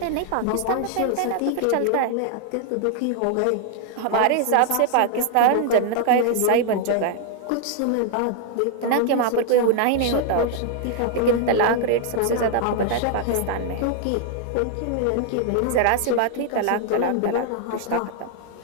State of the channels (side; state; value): both; different; correlation 0.00